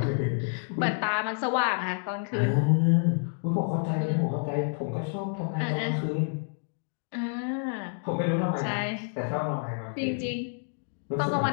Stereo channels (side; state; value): right; silent; 59 dB below the other